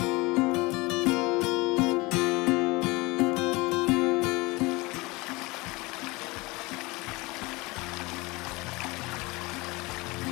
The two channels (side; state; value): right; quieter; 23.8 dB